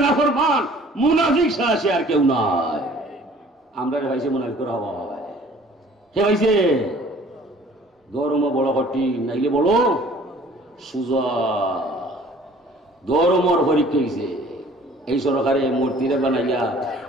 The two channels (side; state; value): both; normal; correlation 0.52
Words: নাফরমান মুনাফিক ছাড়া সে আর কেউ নাই। আমরা ভাইছে মুনাফিকের হওয়া হয় কে ভাইছে ধর্ম বড় কঠিন নাইলে বড় সুজা ধর্মর পরীক্ষা হয়েছে এই সরকারে মূর্তিরে বানাইয়া